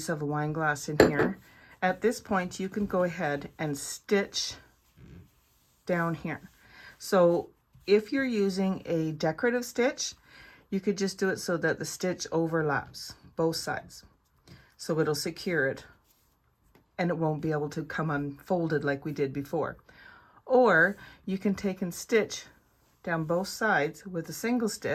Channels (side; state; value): both; identical; correlation 1.00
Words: of a wine glass in here, at this point you can go ahead and stitch down here. So if you're using a decorative stitch, you could just do it so that the stitch overlaps both sides. So it'll secure it and it won't be able to come unfolded like we did before. Or you can take and stitch down both sides with a single